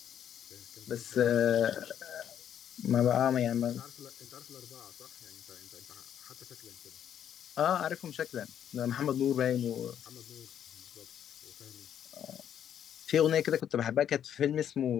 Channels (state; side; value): quieter; right; 9.6 dB